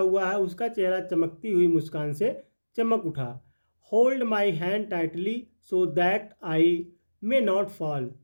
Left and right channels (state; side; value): inverted; both; correlation -1.00